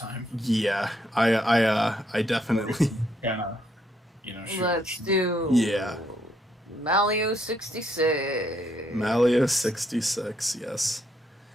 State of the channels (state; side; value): normal; both; correlation 0.73